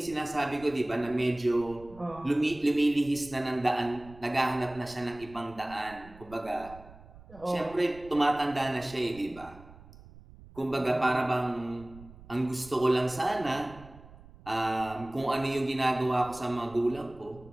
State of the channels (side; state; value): right; noise; rumble, 20 dB below the sound